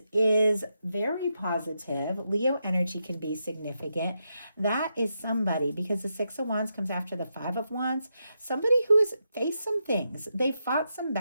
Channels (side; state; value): both; inverted; correlation -0.84